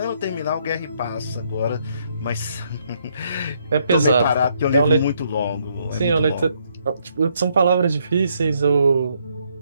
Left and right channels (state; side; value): inverted; both; correlation -0.72